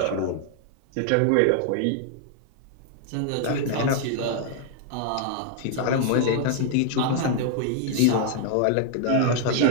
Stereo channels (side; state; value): both; different; correlation 0.00